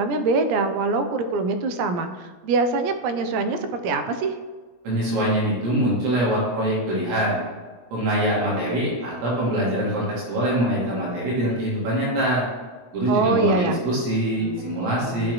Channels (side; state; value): left; late; 17 ms